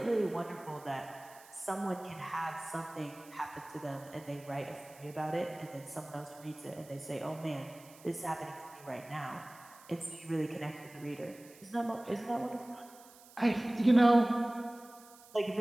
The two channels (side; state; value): right; noise; hiss, 22 dB below the sound